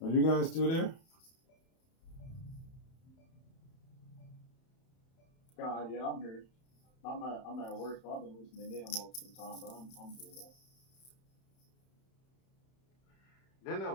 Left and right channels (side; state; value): right; late; 31 ms